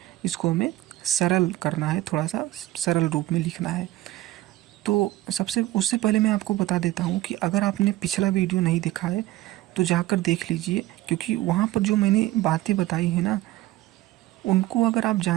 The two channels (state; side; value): quieter; left; 16.3 dB